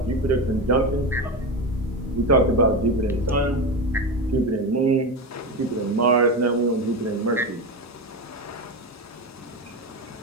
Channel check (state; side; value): normal; both; correlation 0.18